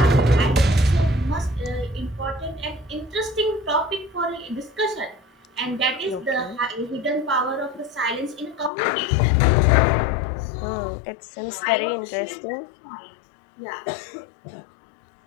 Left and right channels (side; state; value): right; drops out; at 8.7 s